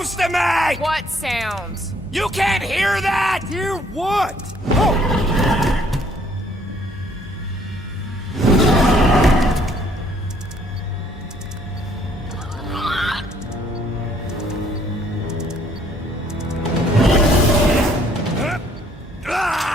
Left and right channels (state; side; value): normal; both; correlation 0.63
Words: to make! What sound? You can't hear that! Hear what?